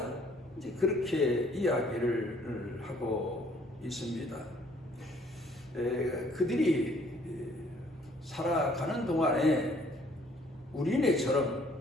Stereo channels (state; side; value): normal; both; correlation 0.60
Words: 이제 그렇게 이야기를 하고 있습니다. 그들이 살아가는 동안에 우리네처럼